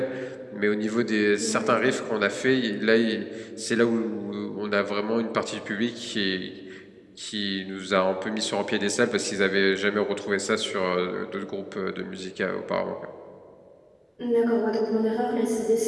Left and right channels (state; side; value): identical; both; correlation 1.00